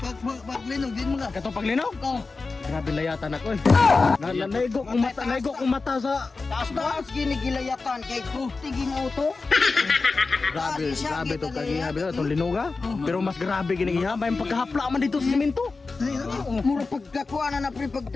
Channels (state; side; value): quieter; right; 4.0 dB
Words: Pag linog din mo nga. katong paglinog? Oh. Grabe layatan ako eh. Naigo kong mata sa Taas ginigilayatan kay tiging auto. grabe to kagihabi to itong linuga. Pero mas grabe ginigihabay yung pagkahapla man dito sa simento. Mura pagkakuha na pre pag